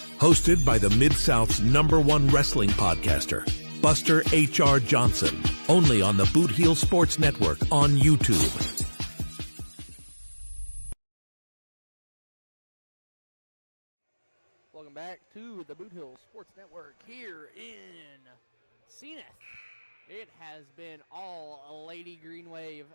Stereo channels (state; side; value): inverted; both; correlation -1.00